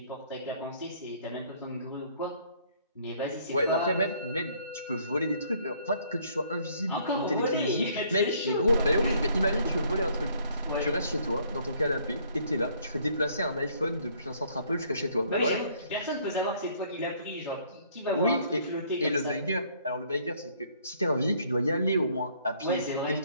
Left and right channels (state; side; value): inverted; both; correlation -0.62